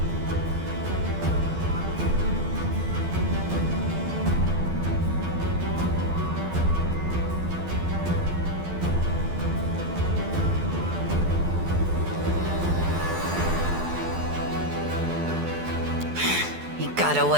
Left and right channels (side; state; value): left; late; 12 ms